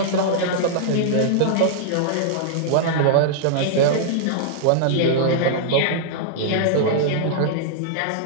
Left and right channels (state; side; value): different; both; correlation -0.01